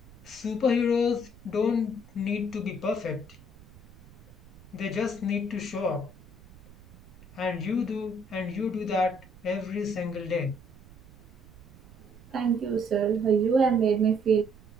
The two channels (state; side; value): noise; right; rumble, 23 dB below the sound